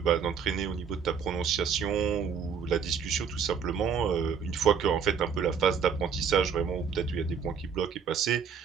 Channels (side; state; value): left; quieter; 6.7 dB